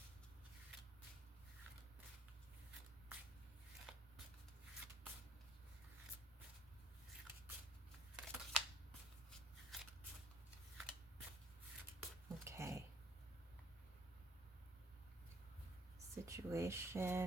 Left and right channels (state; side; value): normal; both; correlation 0.61